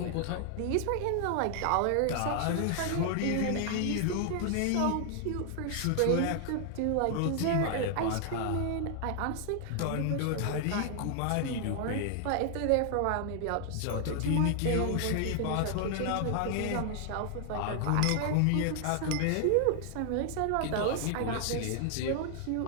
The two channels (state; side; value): different; both; correlation 0.00